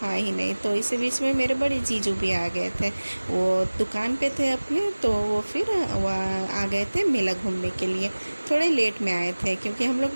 ही नहीं। तो इसी बीच में मेरे बड़े जीजू भी आ गए थे, वो दुकान पे थे अपने। तो वो फिर आ गए थे मेला घूमने के लिए। थोड़े लेट में आए थे क्योंकि हम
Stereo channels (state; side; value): inverted; both; correlation -1.00